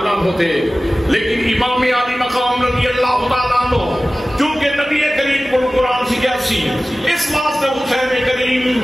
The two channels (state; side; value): normal; both; correlation 0.97